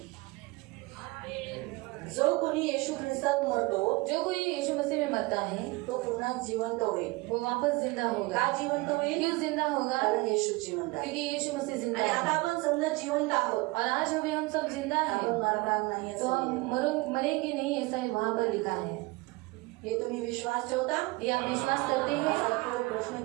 जो कोणी येशू ख्रिस्तात मरतो जो कोई यीशु मसीह में मरता है तो पुन्हा जिवंत होईल वो वापस जिंदा होगा। का जिवंत होईल क्यों जिंदा होगा? कारण येशू जिवंत आहे क्योंकि यीशु मसीह जिंदा आणि आता है आपण समजा जिवंत आहोत और आज हमें हम सब जिंदा आपण हैं मरणार नाही तो असं हम लिहिलंय. मरेंगे नहीं ऐसा वहाँ पर लिखा है। हे तुम्ही विश्वास ठेवता ये आप विश्वास करते हैं? असा पुढे प्रश्न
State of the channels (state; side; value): quieter; left; 23.7 dB